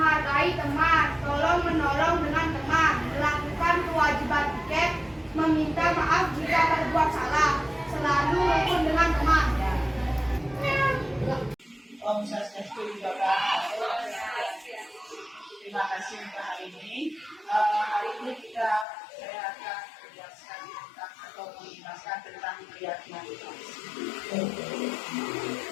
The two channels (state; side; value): drops out; right; at 18.9 s